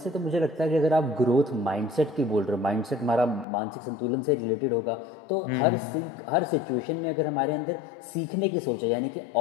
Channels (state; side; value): drops out; right; at 3.5 s